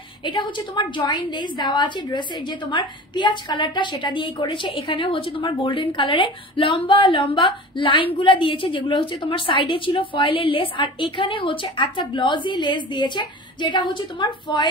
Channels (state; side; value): normal; both; correlation 0.37